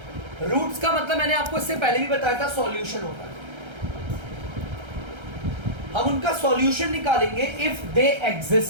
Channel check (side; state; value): left; late; 1.3 ms